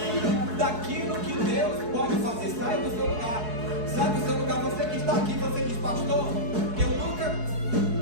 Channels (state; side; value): late; left; 4.7 ms